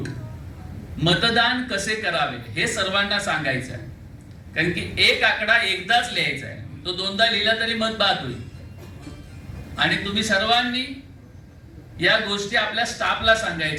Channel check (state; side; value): identical; both; correlation 1.00